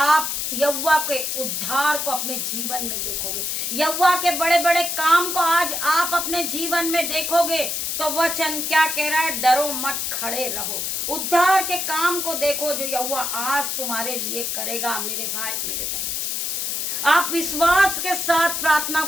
यहोवा के उद्धार को अपने जीवन में देखोगे। यहोवा के बड़े बड़े काम को आज आप अपने जीवन में देखोगे। तो वचन क्या कह रहा है, डरो मत, खड़े रहो, उद्धार के काम को देखो जो यहोवा आज तुम्हारे लिए करेगा मेरे भाई मेरे बहन। आप विश्वास के साथ प्रार्थना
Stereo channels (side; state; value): left; noise; hiss, 1 dB below the sound